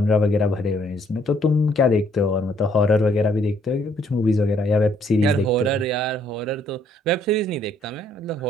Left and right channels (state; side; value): normal; both; correlation 0.66